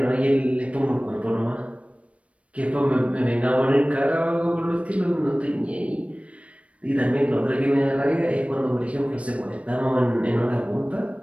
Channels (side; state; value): left; late; 0.063 ms